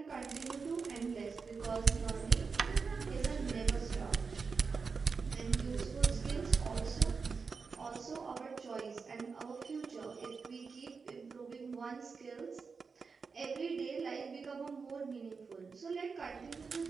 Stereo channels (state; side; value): quieter; left; 5.1 dB